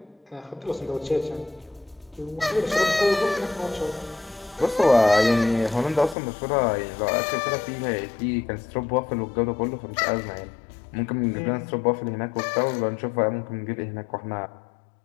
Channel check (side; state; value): right; drops out; at 6.2 s